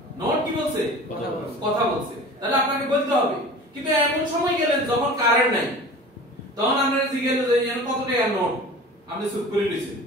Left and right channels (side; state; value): both; normal; correlation 0.39